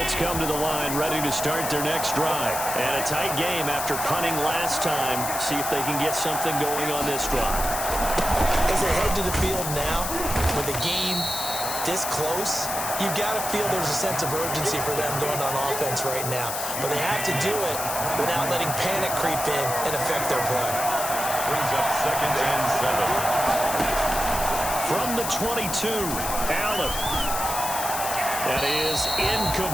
come to the line ready to start their next drive. And a tight game after punting last time. See if they can get something going on this drive. As they head to the field now, with the game this close, you've got to feel there's a sense of urgency for them going on offense right now. But they have to do it without letting panic creep in and affect their play. Brings up 2nd and 7. From the 22, Allen. That is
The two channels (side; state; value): left; noise; hiss, 4 dB below the sound